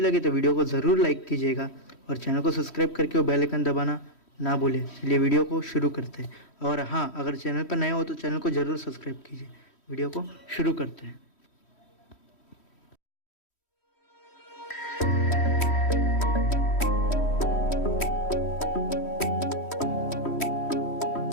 लगे तो वीडियो को ज़रूर लाइक कीजिएगा और चैनल को सब्सक्राइब करके वो बेल आइकन दबाना ना भूलें। चलिए वीडियो को शुरू करते हैं। और हाँ, अगर चैनल पर नए हो तो चैनल को ज़रूर सब्सक्राइब कीजिए। वीडियो को शुरू करते हैं।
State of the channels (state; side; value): late; right; 3.1 ms